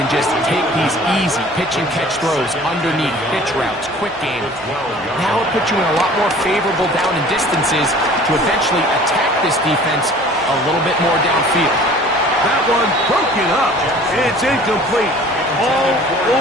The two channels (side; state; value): left; noise; hum, 30 dB below the sound